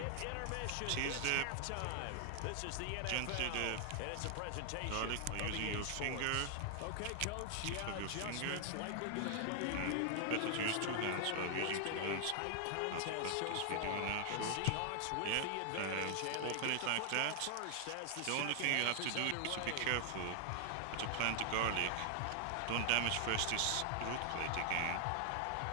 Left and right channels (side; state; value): both; different; correlation 0.00